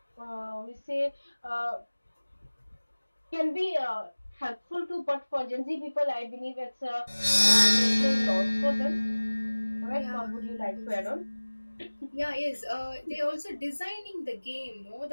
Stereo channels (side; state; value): both; inverted; correlation -1.00